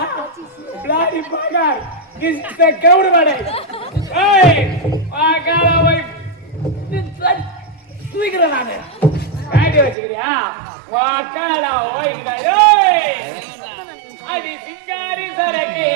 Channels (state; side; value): drops out; left; at 10.0 s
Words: பிளாடி பாகார். கிஸ்த கவுடுவாடே. ஏய் வாக்காடா போய் தூக்குறடா நானே. காடி வச்சிக்கிறியா? வாக்காடா ஓய்ங்கடா ஏய். அடி சிங்காரி சரக்கே